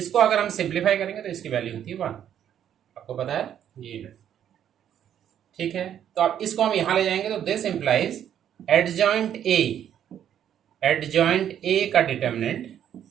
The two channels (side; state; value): left; quieter; 9.9 dB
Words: अगर हम सिंप्लीफाई करेंगे तो इसकी वैल्यू होती है 1, आपको पता है ये। ठीक है, तो अब इसको हम यहां ले जाएंगे तो दिस इंप्लाइज एडजॉइंट ए का determinant